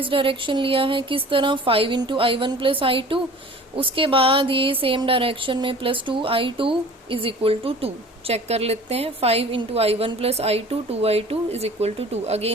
डायरेक्शन लिया है। किस तरह, 5 इंटू I1 प्लस I2, उसके बाद ये सेम डायरेक्शन में plus 2I2 is equal to 2, check कर लेते हैं। 5 into I1 plus I2, 2I2 is equal to 2।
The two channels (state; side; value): normal; both; correlation 0.44